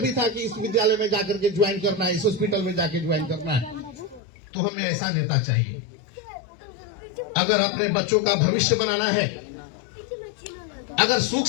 भी था कि इस विद्यालय में जाकर के ज्वाइन करना है, इस हॉस्पिटल में जाकर ज्वाइन करना है। तो हमें ऐसा नेता चाहिए। अगर अपने बच्चों का भविष्य बनाना है, अगर सुख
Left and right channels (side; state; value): right; drops out; at 4.2 s